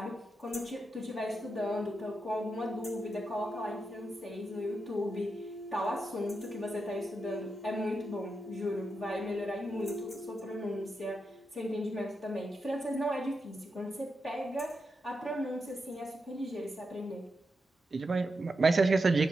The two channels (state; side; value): normal; both; correlation 0.86